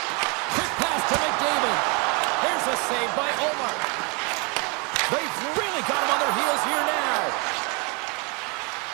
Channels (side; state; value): left; quieter; 30.9 dB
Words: Quick pass to McDavid. Here's a save by Omar. They've really got him on their heels here now.